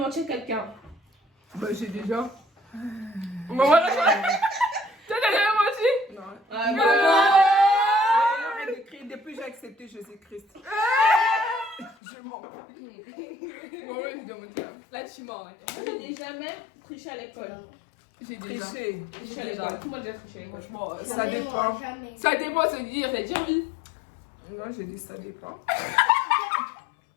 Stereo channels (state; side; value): drops out; right; at 12.0 s